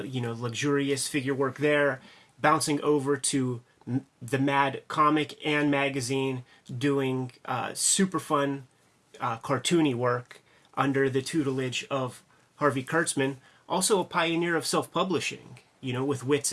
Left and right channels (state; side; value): identical; both; correlation 1.00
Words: luxurious figure work there, bouncing over to the Mad comic and magazine, doing super fun cartoony work under the tutelage of Harvey Kurtzman. Also a pioneer of self-publishing, with Wits